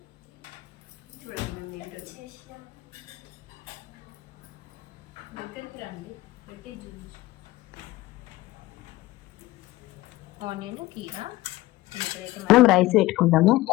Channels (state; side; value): quieter; right; 18.1 dB